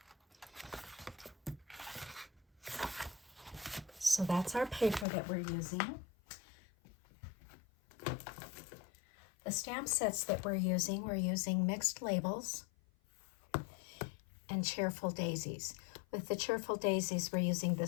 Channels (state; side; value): drops out; right; at 5.1 s